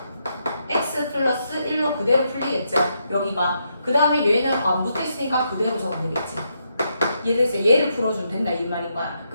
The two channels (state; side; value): inverted; both; correlation -0.80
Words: x 플러스 1로 그대로 풀리겠죠. 여기가. 그 다음에 얘는 안 붙어있으니까 그대로 적으면 되겠지. 얘를 얘를 풀어주면 된다 이 말인 거야.